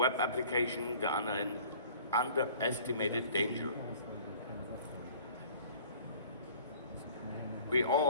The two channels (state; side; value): inverted; both; correlation -0.50